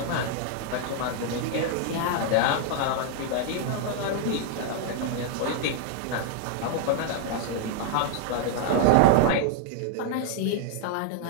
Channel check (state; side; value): different; both; correlation 0.00